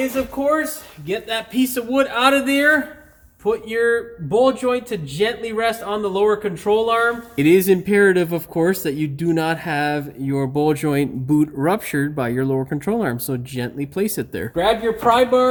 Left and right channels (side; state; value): both; identical; correlation 1.00